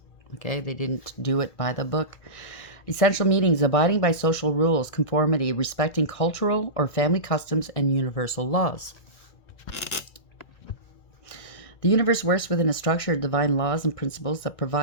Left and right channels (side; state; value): right; late; 1.6 ms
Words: Okay, they didn't do it by the book. Essential meanings: abiding by social rules, conformity, respecting cultural or family customs and universal laws. The universe works within a structure of divine laws and principles that